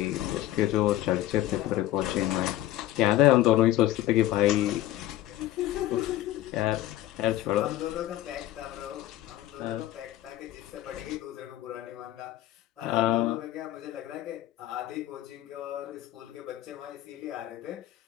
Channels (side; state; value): right; quieter; 14.2 dB